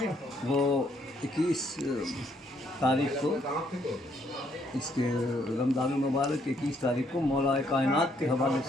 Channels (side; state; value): both; normal; correlation 0.70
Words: वो 21 तारीख को, इसके रमज़ान मुबारक 21 तारीख को मौला कायनात के हवाले